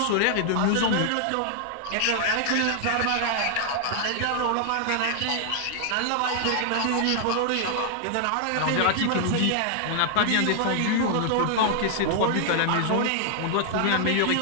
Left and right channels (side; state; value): both; different; correlation 0.00